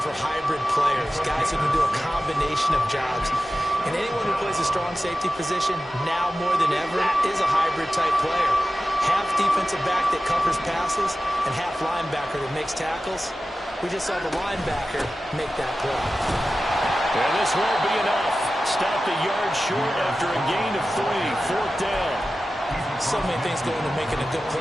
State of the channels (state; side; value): normal; both; correlation 0.94